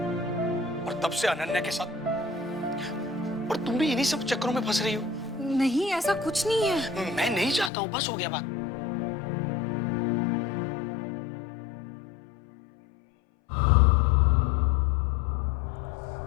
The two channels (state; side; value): drops out; right; at 7.7 s